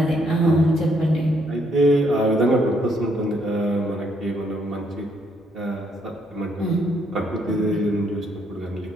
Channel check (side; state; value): both; normal; correlation 0.71